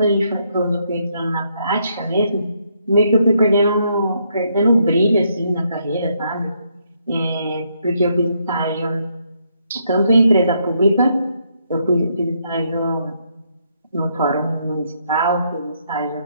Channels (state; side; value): inverted; both; correlation -0.74